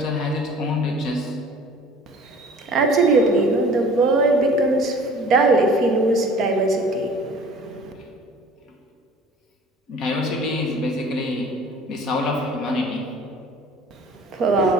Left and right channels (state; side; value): normal; both; correlation 0.47